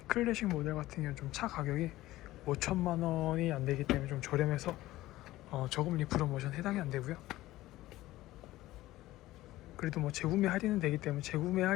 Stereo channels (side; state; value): right; quieter; 16.5 dB